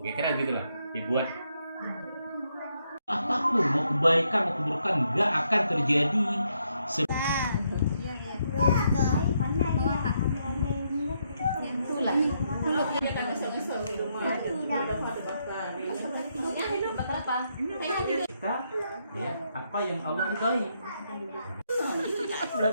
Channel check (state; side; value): inverted; both; correlation -0.77